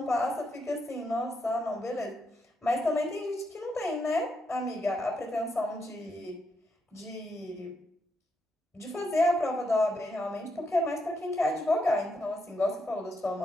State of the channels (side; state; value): both; normal; correlation 0.80